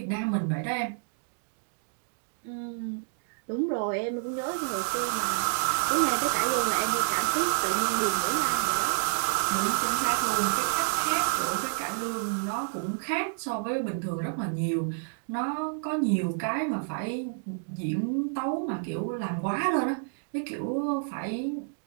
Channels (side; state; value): left; silent; digital silence